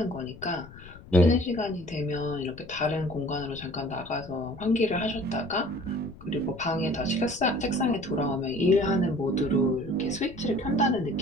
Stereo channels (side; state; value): left; noise; rumble, 18 dB below the sound